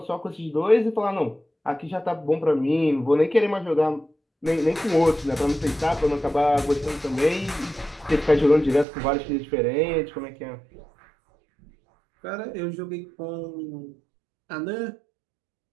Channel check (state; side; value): drops out; left; at 8.8 s